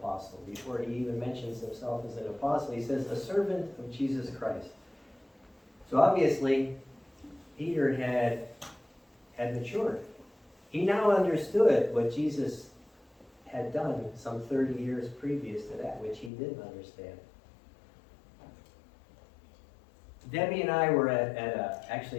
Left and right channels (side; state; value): right; drops out; at 16.3 s